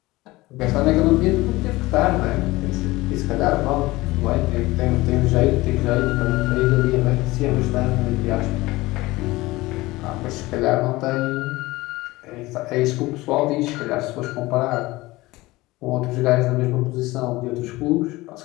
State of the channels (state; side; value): quieter; right; 19.9 dB